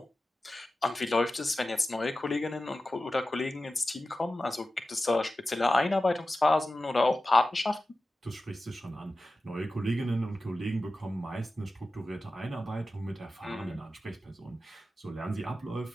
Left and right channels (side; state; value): both; normal; correlation 0.94